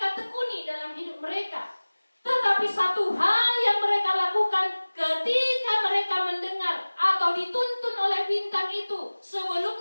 tekuni dalam hidup mereka. Tetapi satu hal yang mereka lakukan ketika mereka mendengar atau dituntun oleh bintang itu,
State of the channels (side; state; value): both; inverted; correlation -1.00